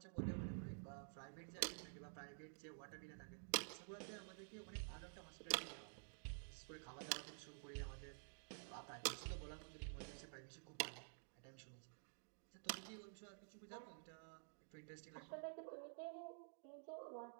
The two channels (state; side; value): silent; left; digital silence